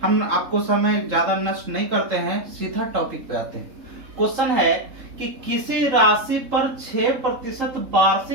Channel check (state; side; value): late; left; 3.8 ms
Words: हम आपको समय ज्यादा नष्ट नहीं करते हैं, सीधा टॉपिक पे आते हैं। क्वेश्चन है कि किसी राशि पर 6%